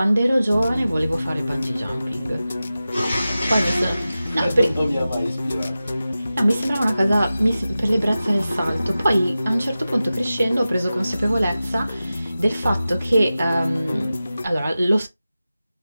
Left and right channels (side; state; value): both; inverted; correlation -0.95